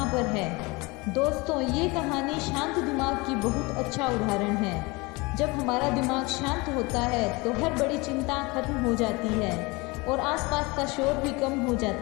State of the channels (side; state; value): right; quieter; 25.1 dB